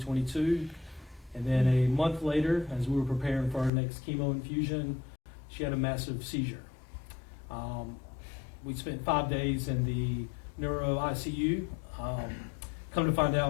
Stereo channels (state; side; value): drops out; right; at 3.7 s